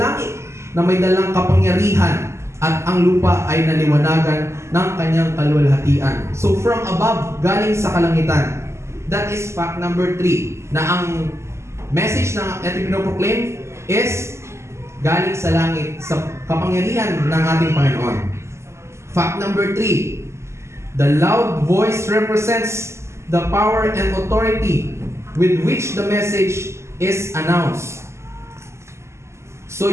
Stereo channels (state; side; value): late; left; 0.13 ms